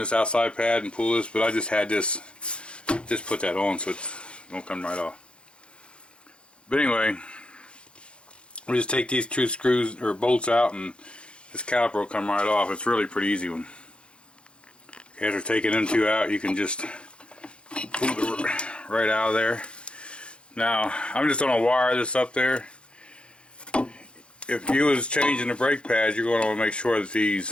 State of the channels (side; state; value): right; late; 0.057 ms